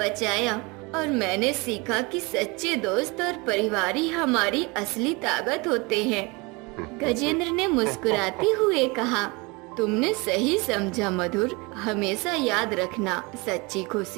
और मैंने सीखा कि सच्चे दोस्त और परिवार ही हमारी असली ताकत होते हैं। गजेंद्र ने मुस्कुराते हुए कहा, तुमने सही समझा मधुर। हमेशा याद रखना, सच्ची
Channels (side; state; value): left; quieter; 26.7 dB